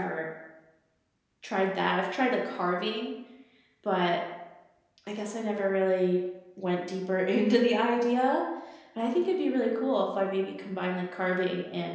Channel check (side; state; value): both; identical; correlation 1.00